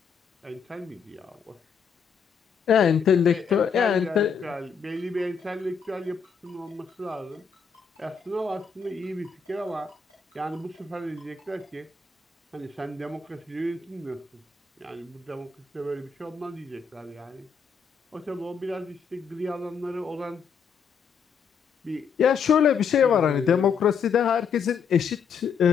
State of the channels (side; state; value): right; quieter; 6.2 dB